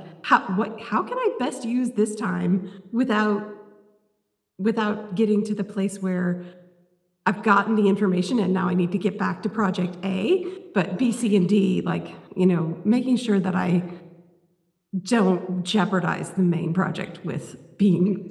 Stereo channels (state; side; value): identical; both; correlation 1.00